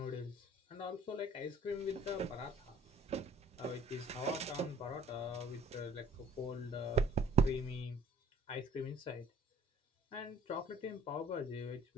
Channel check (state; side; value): normal; both; correlation 0.55